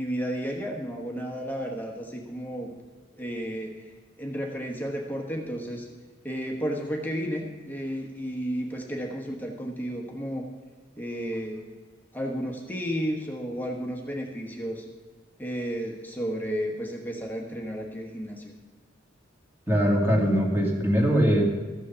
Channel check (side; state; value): both; normal; correlation 0.81